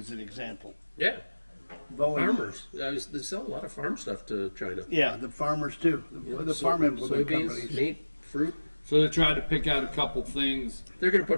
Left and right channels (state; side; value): inverted; both; correlation -1.00